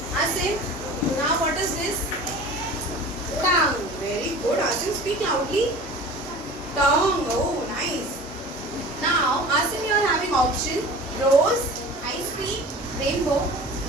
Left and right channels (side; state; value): both; normal; correlation 0.40